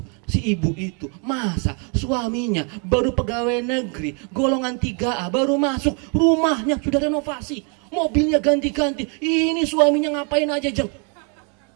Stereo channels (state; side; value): quieter; left; 37.7 dB